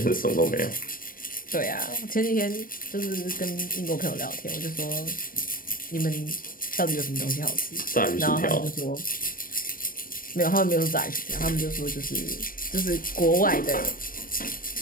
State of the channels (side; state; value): right; late; 0.41 ms